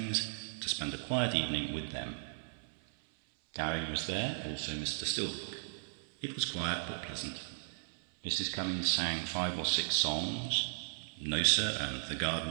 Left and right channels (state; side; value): silent; left; 54 dB below the other